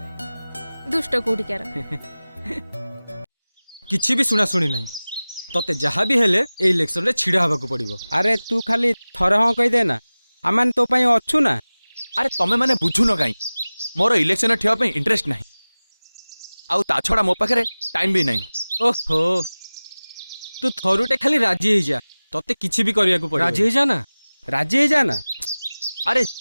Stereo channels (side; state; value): both; inverted; correlation -0.99